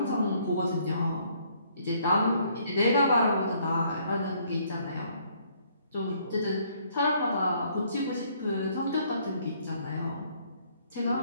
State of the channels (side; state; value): both; inverted; correlation -0.65